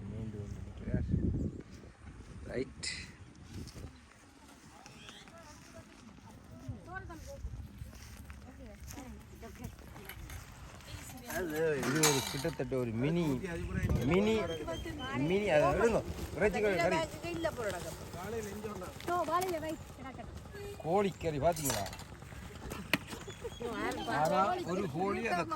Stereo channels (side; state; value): both; identical; correlation 1.00